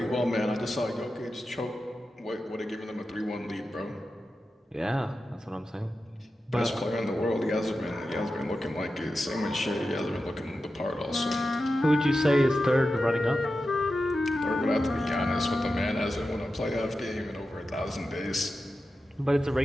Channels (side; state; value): both; normal; correlation 0.91